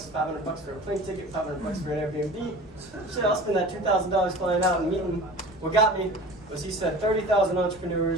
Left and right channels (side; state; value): both; normal; correlation 0.39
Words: for a plane ticket, $500 for an Airbnb. Shit, I'll spend that $2,000 flying out and meeting. What got me was he said 30,000